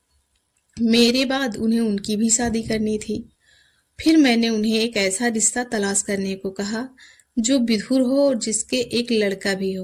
मेरे बाद उन्हें उनकी भी शादी करनी थी। फिर मैंने उन्हें एक ऐसा रिश्ता तलाश करने को कहा जो विधुर हो और जिसके एक लड़का भी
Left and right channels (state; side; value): identical; both; correlation 1.00